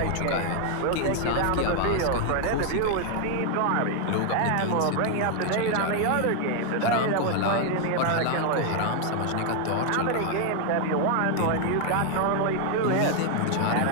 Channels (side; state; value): both; different; correlation 0.00